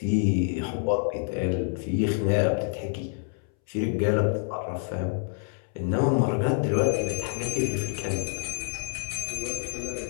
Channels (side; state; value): right; silent; 60 dB below the other